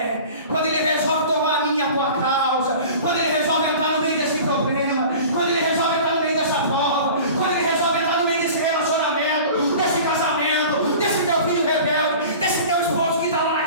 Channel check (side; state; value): both; inverted; correlation -0.40